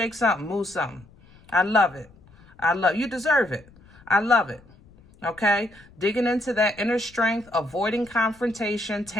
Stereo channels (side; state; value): left; noise; rumble, 26 dB below the sound